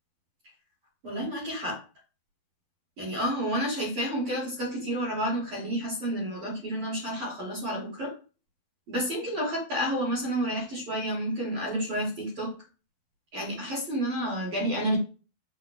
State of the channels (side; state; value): left; late; 12 ms